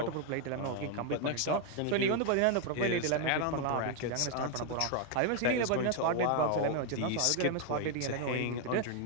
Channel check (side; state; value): both; different; correlation 0.01